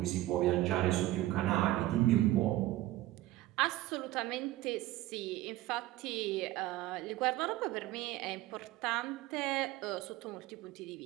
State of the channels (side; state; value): left; quieter; 16.2 dB